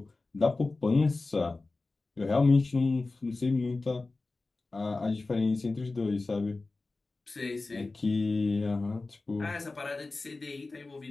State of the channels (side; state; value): right; quieter; 3.5 dB